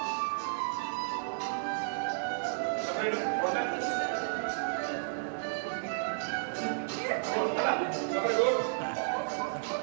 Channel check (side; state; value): left; silent; 56 dB below the other